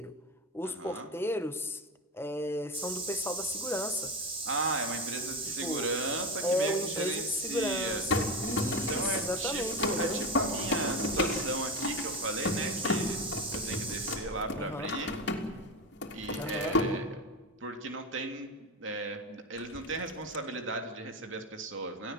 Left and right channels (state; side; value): normal; both; correlation 0.20